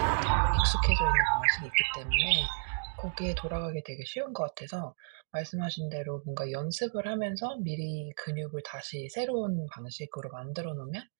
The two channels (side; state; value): left; silent; digital silence